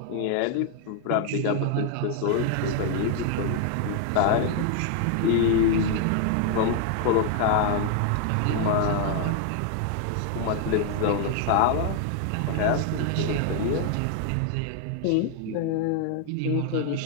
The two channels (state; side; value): different; both; correlation 0.00